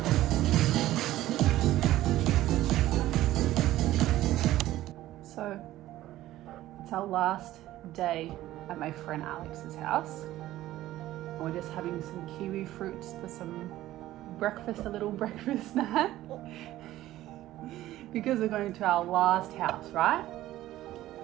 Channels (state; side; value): quieter; left; 14.9 dB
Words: So it's our last day at my friend Alex's house. And we're just having some kiwi fruits for some breakfast, a little breakfast snack. Because we're going to our last house, right?